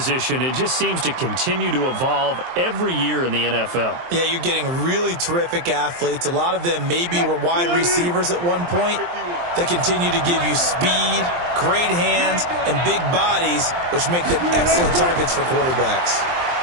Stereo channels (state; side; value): late; left; 23 ms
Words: it just seems to continue to evolve every year in the NFL. Yeah, you're getting really terrific athletes. A lot of them maybe were wide receivers at one point. They continue to give you speed, great hands, and big bodies, which make them excellent targets for quarterbacks.